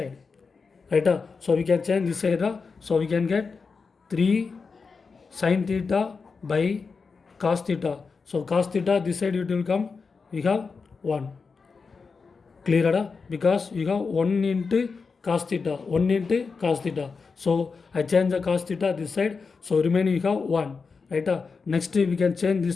right? So we can change this side. So we can get 3 sin theta by cos theta. So cos theta this side it will come, we have 1. Clear? Because you have 1 into cos theta, 1 into cos theta. So I change the cos theta this side, so remaining you have 1, right? Next we can change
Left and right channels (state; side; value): quieter; right; 4.9 dB